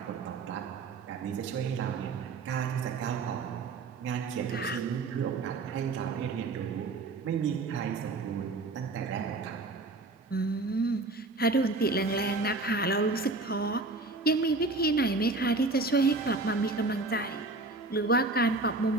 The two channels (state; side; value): quieter; left; 3.5 dB